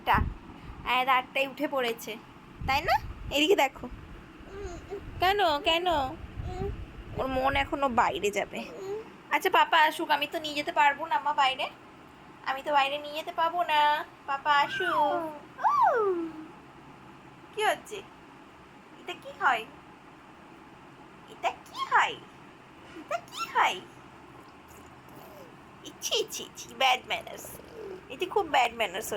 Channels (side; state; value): both; identical; correlation 1.00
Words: আয়াত 8টায় উঠে পড়েছে, তাই না? এদিকে দেখো। কেন কেন? ওর মন এখনো বাইরে যাবে। আচ্ছা পাপা আসুক, আমি তো নিয়ে যেতে পারবো না মা বাইরে। আমি তো বাইরে নিয়ে যেতে পাবো না। পাপা আসুক। কি হচ্ছে? এটা কি হয়? এটা কি হয়? এটা কি হয়? ইচ্ছি ইচ্ছি ইচ্ছি, ব্যাড ম্যানার্স। এটি খুব ব্যাড ম্যানার্স